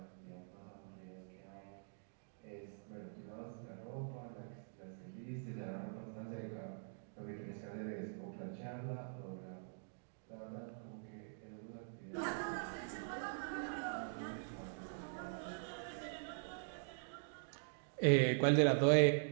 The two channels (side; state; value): left; silent; digital silence